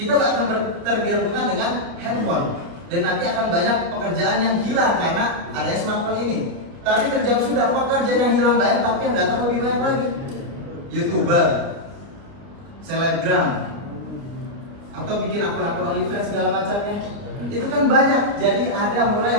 akan tergantungan dengan handphone dan nanti akan banyak pekerjaan yang hilang karena adanya smartphone ini. Tapi terjawab sudah, pekerjaan yang hilang banyak tapi yang datang lebih banyak lagi. YouTuber, selebgram, atau bikin akun-akun OnlyFans segala macamnya, itu kan banyak. Jadi ada mulai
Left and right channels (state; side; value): late; left; 29 ms